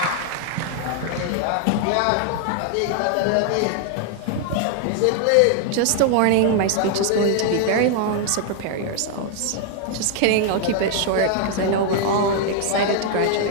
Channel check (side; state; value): both; different; correlation 0.00